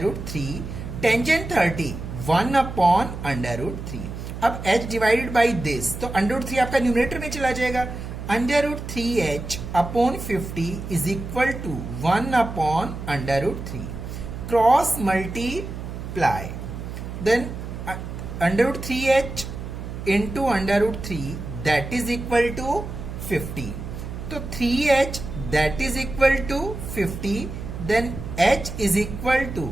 root 3, tangent 30 1 upon under root 3। अब H divided by this, तो under root 3 आपका numerator में चला जाएगा। Under root 3H upon 50 is equal to 1 upon under root 3, cross multiply, then under root 3H into under root 3 that is equal to 50। तो 3h that is equal to 50, then h is equal to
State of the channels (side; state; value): right; noise; hum, 8 dB below the sound